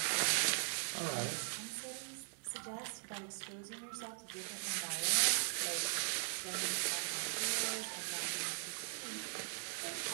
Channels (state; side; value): silent; left; digital silence